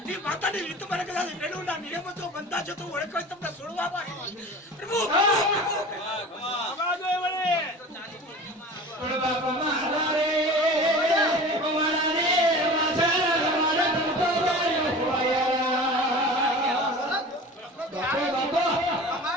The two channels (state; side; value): normal; both; correlation 0.37